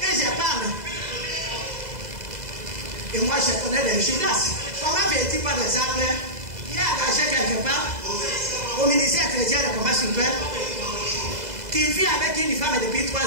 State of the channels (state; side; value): late; left; 2.0 ms